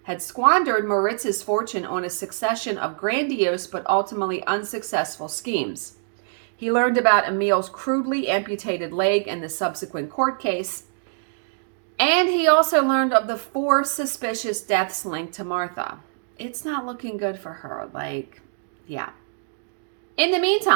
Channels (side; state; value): left; silent; digital silence